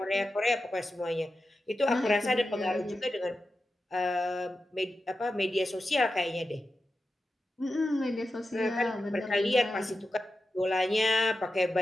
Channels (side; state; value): both; normal; correlation 0.91